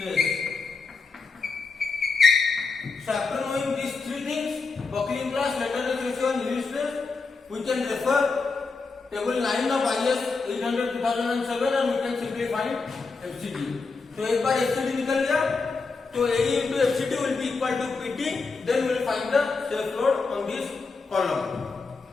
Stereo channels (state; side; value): quieter; right; 4.3 dB